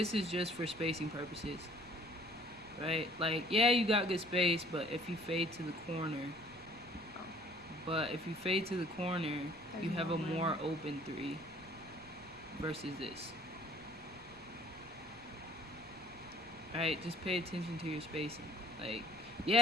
is just for spacing purposes, right? Like, yeah, you got good space, but if you fade to the corner, you have a more open 3 versus this. Alright, just pay attention to your spacing. Like,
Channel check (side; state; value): left; noise; rumble, 24 dB below the sound